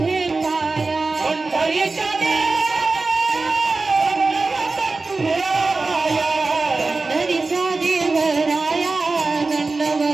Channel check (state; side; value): quieter; left; 3.7 dB